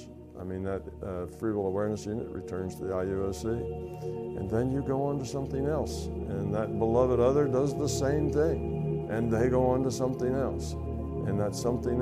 I mean, that free will awareness unit returns to the IUOC, and then you go on to something else, and that beloved other does the same thing, and they go on to something else, and that something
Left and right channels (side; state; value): both; identical; correlation 1.00